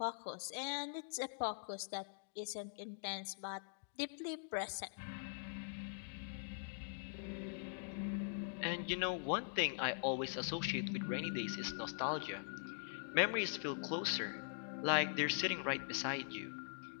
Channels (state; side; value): silent; right; digital silence